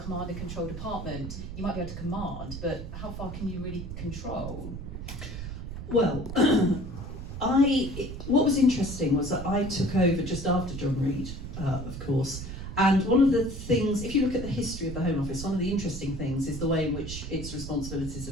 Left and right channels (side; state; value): right; noise; rumble, 8 dB below the sound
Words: and control department, you might be able to command, but how far can you really control? Well, what was interesting was that I took over just after John Reid, of course, and one of the things, if you look at the history of the Home Office, one of the interesting things is the way in which its responsibilities